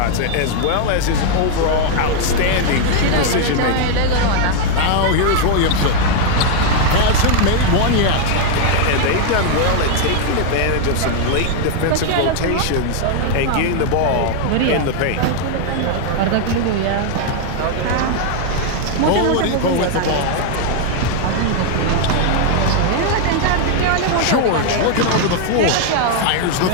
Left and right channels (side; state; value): both; different; correlation 0.00